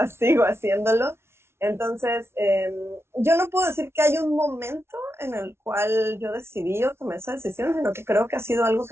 sigo haciéndolo. Entonces, yo no puedo decir que hay un momento en el cual yo decidí o tomé esa decisión, sino que creo que ha sido algo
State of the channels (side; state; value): left; late; 0.12 ms